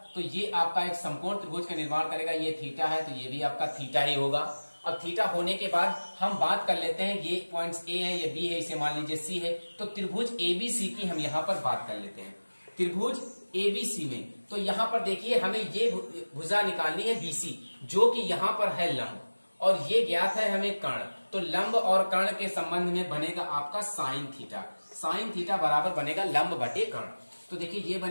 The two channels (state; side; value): inverted; both; correlation -1.00